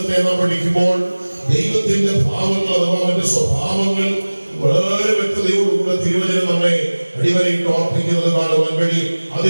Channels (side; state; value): both; inverted; correlation -1.00